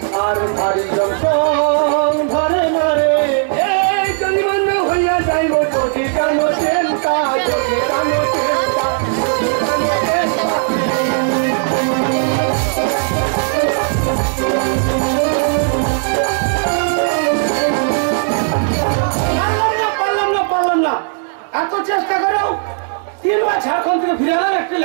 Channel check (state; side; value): silent; left; 69 dB below the other